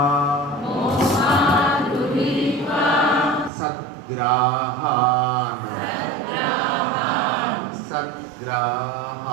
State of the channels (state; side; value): drops out; left; at 3.5 s